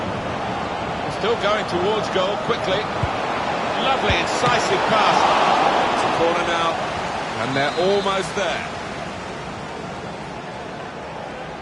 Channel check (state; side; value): identical; both; correlation 1.00